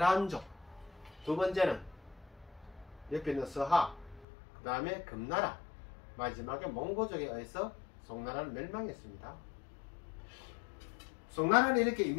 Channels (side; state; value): right; drops out; at 4.2 s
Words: 두 번째는 옆에 있는 서하, 그 다음에 금나라, 마지막에 몽고족에 의해서 송나라는 멸망했습니다. 송나라는 이렇게